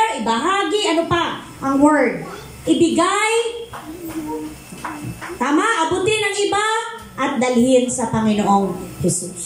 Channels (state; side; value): identical; both; correlation 1.00